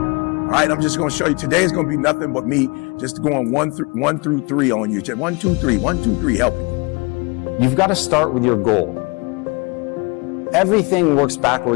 right, I'm just going to show you. Today is going to be nothing but me just going 1 through 3 on you. 1, 2, 3, 1, 2, 3, helping you. You've got to start with your goal. Everything works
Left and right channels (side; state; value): right; quieter; 28.9 dB